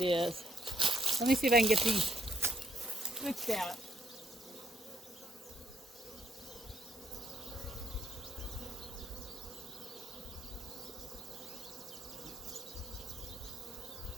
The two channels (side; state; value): both; normal; correlation 0.71